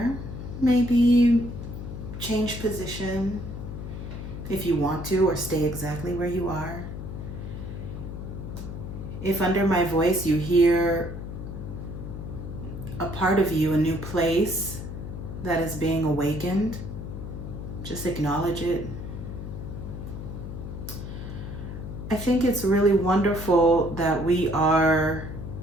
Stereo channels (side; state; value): left; noise; hum, 8 dB below the sound